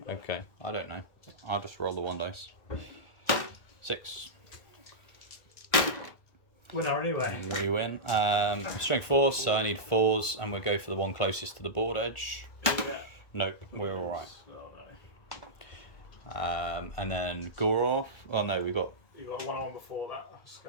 Though. Okay, I don't know. I'll just roll the 1 dice. 6. Winner anyway. We win. Strength 4, so I need 4s, and we'll go for the one closest to the board edge. Yeah. No, we're alright. Oh no. And then Gorov. Oh no, we got. You got a 1-on-1 before that.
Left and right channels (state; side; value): late; right; 1.5 ms